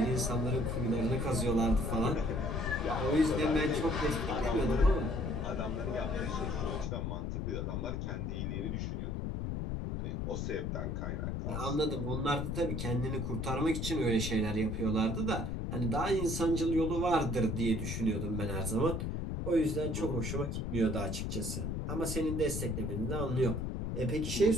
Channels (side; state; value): left; noise; rumble, 2 dB below the sound